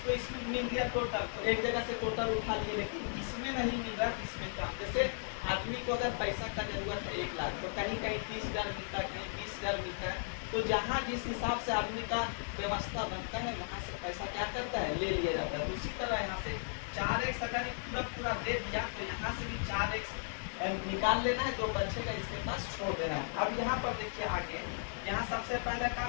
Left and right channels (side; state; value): right; silent; digital silence